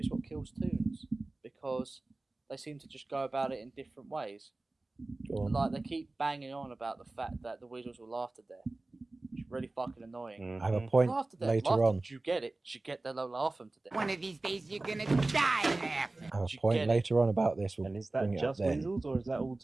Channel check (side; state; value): left; quieter; 3.1 dB